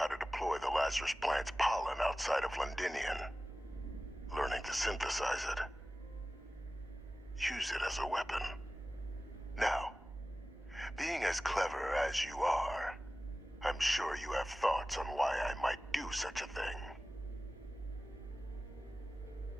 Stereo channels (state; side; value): normal; both; correlation 0.96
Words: to deploy the Lazarus plant's pollen outside of Londinian, learning to synthesize it, use it as a weapon. Now, being as clever as you are, I'm sure you have thoughts on why I might do such a thing.